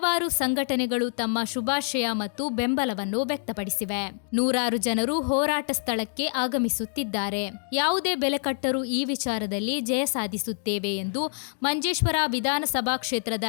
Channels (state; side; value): silent; right; digital silence